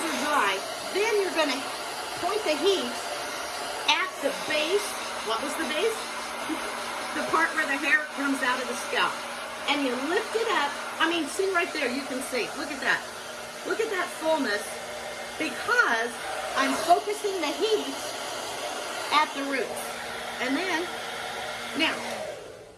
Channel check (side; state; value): both; identical; correlation 1.00